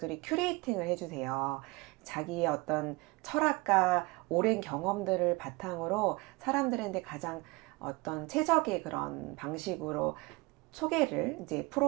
큐레이팅을 해주세요. 자기의 어떤 철학과 오랜 경험들을 바탕으로 사람들한테 가장 어떤 최적의 그런 방식으로 소개를 이제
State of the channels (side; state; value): left; quieter; 24.5 dB